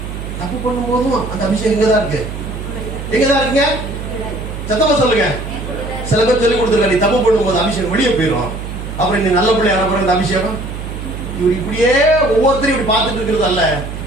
தப்பு பண்ணும் போதும் அந்த அபிஷேகம் எங்கதான் இருக்கு? எங்கதான் இருக்குங்க? சத்தமா சொல்லுங்க. சில பேர் சொல்லி கொடுத்துருக்க, நீ தப்பு பண்ணும் போது அபிஷேகம் வெளியே போயிடும், அப்புறம் நீ நல்ல பிள்ளை அனுப்புற இந்த அபிஷேகம். இவர் இப்படியே ஒவ்வொருத்தரும் இப்படி பார்த்துட்டு இருக்கிறது அல்ல.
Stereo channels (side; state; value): right; noise; hum, 8 dB below the sound